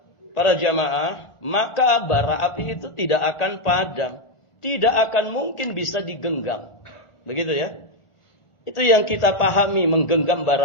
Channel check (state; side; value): late; right; 1.4 ms